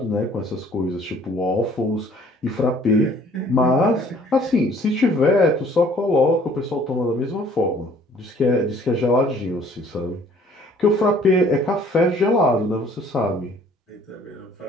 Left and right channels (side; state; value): both; normal; correlation 0.56